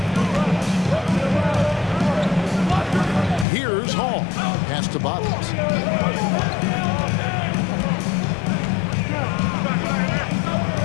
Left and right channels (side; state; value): right; drops out; at 3.5 s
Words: Here's Hall. Pass to Bottoms.